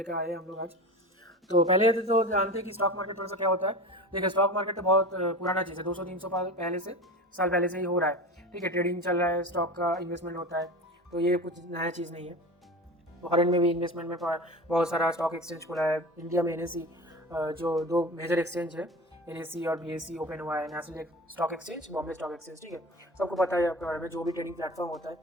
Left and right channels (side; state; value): both; normal; correlation 0.31